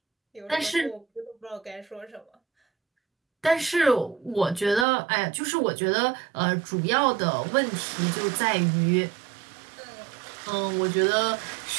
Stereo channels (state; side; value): drops out; left; at 4.9 s